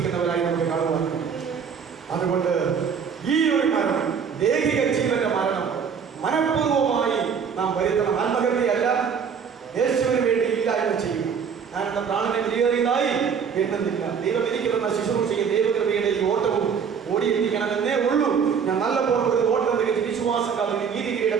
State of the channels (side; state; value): left; quieter; 6.7 dB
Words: നമുക്ക് കാണുവാൻ. അതുകൊണ്ട് ഈ ഒരു മരണം, ദേഹിക ജീവന്റെ മരണം മനഃപൂർവമായി നാം വരുത്തണം. ആത്മഹത്യയല്ല, യേശുവിന് വേണ്ടി ഇല്ലായ്മ ചെയ്യും. ഞാൻ എന്റെ പ്രാണനെ വിലയേറിയതായി എണ്ണുന്നില്ല. ദൈവം എനിക്ക് തന്ന ശുശ്രൂഷയും ദൈവകൃപയുടെ ഈ ഓട്ടവും ഓടിയിരിക്കണമെന്നേ ഉള്ളൂ. ഞാൻ നല്ല പോലെ ഓട്ടം വിശ്വാസക്കാർ നീതി കിരീടം